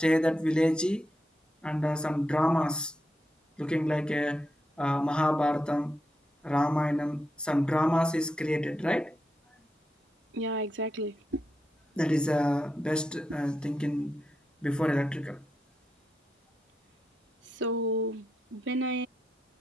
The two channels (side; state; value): both; normal; correlation 0.85